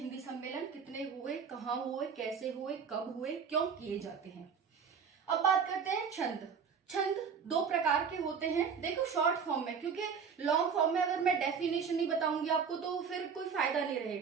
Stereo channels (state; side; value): quieter; left; 6.3 dB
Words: सम्मेलन कितने हुए, कहाँ हुए, कैसे हुए, कब हुए, क्यों किए जाते हैं। अब बात करते हैं छंद। छंद 2 प्रकार के होते हैं। देखो शॉर्ट फॉर्म में, क्योंकि लॉन्ग फॉर्म में अगर मैं डेफिनेशन नहीं बताऊंगी आपको तो फिर कोई फायदा नहीं